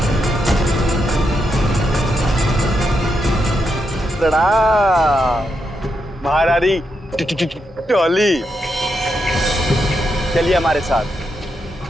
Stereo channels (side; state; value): both; normal; correlation 0.83